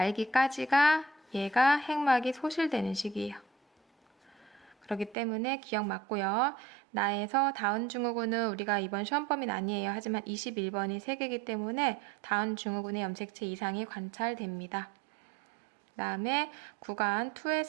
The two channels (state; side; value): drops out; left; at 5.2 s